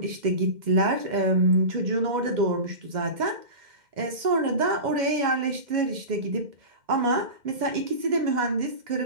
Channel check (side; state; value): left; late; 2.1 ms